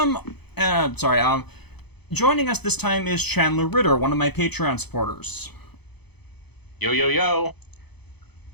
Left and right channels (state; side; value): late; right; 0.98 ms